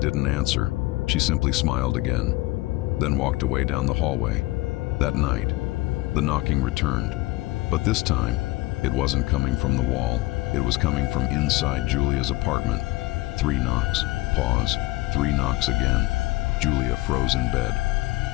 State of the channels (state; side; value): quieter; right; 20.2 dB